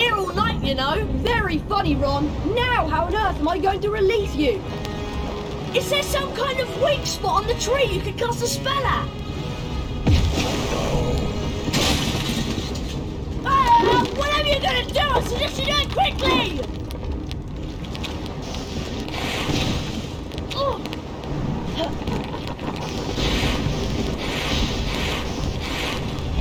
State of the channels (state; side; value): identical; both; correlation 1.00